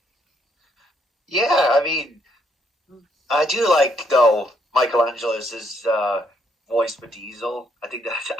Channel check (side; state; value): both; normal; correlation 0.72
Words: Yeah, I mean, I do like, though, Michelangelo's voice for Diesel. I think that